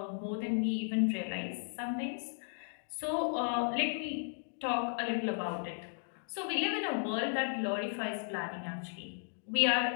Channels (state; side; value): silent; right; digital silence